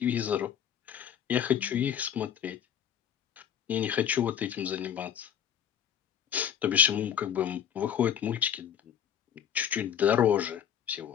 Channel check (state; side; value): quieter; right; 9.1 dB